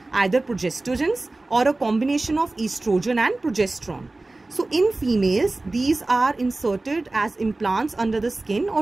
either progestogens or a combination of estrogen and progesterone. So in females, these are inserted as implants under the skin,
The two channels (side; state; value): left; quieter; 3.0 dB